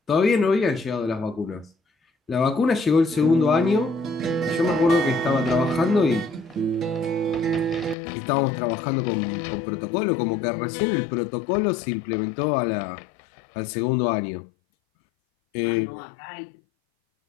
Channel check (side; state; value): right; drops out; at 8.0 s